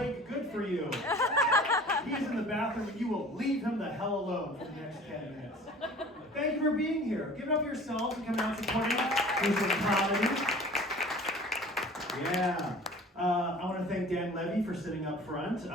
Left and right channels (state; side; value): normal; both; correlation 0.45